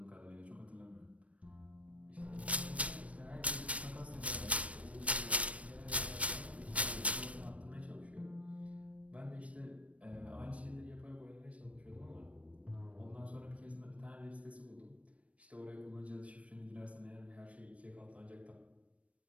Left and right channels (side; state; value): left; late; 0.064 ms